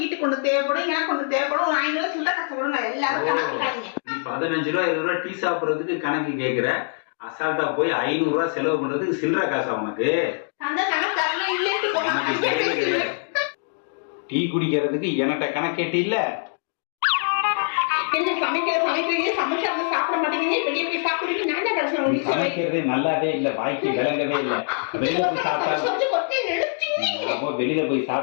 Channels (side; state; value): right; silent; digital silence